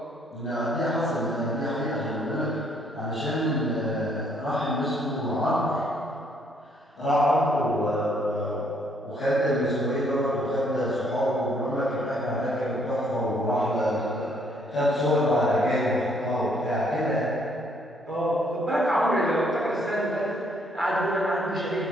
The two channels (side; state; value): both; normal; correlation 0.67